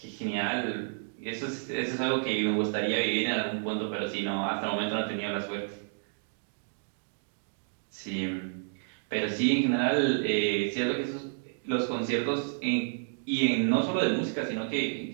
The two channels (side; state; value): left; silent; digital silence